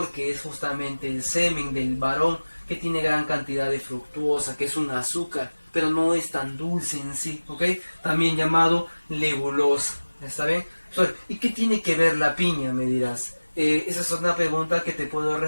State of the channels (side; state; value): both; inverted; correlation -1.00